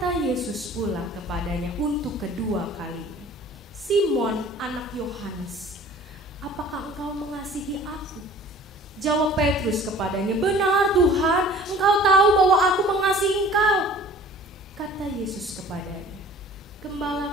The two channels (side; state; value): both; normal; correlation 0.47